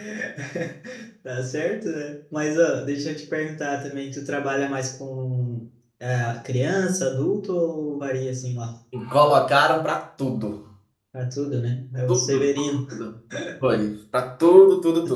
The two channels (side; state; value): both; identical; correlation 1.00